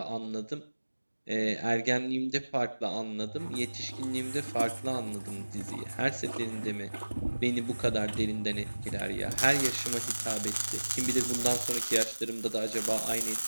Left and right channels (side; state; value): both; inverted; correlation -1.00